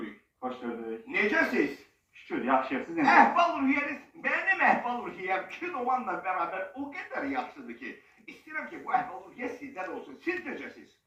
Hoş gördük. Necəsiz? Şükür, yaxşıyıq. Siz necə? Əhval ruhiyyəniz, mənim əhval ruhiyyəm kinomanla beraber o kadar yaxşıdır ki, istəyirəm ki, bu əhval ruhiyyə sizdən olsun. Siz necəsiz?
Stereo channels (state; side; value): identical; both; correlation 1.00